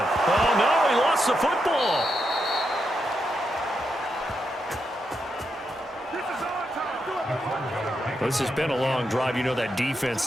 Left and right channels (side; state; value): both; normal; correlation 0.84